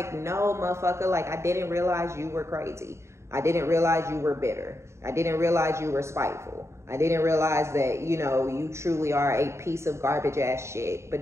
no, motherfucker, like, I didn't realize you were crazy. I didn't realize you were bitter. I didn't realize you were spiteful. I didn't realize that, you know, you truly are a piece of garbage ass shit. But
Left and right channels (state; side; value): late; left; 0.13 ms